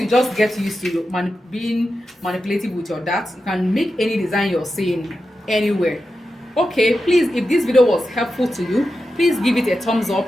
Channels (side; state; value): both; normal; correlation 0.90